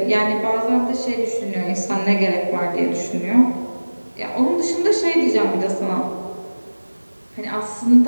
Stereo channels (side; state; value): both; inverted; correlation -1.00